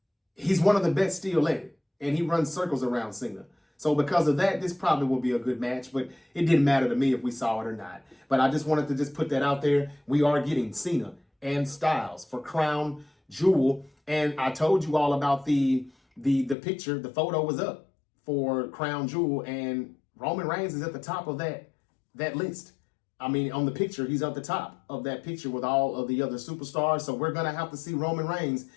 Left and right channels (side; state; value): right; drops out; at 16.6 s